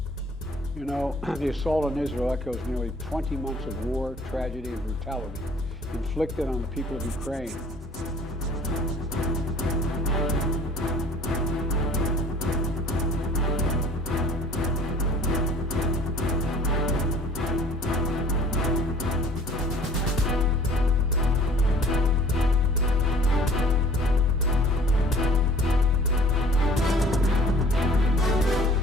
You know, the assault on Israel echoes nearly 20 months of war, tragedy, and brutality inflicted on the people of Ukraine.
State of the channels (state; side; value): normal; both; correlation 0.51